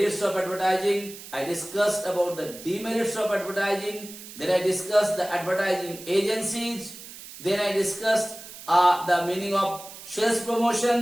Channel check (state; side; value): noise; right; hiss, 15 dB below the sound